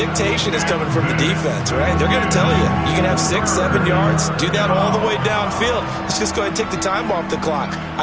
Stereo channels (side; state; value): both; identical; correlation 1.00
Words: is coming from the defense, right? They're going to tell you can have 6, 7 yards, do that all the way downfield. Let's just go ahead and take the time off the clock.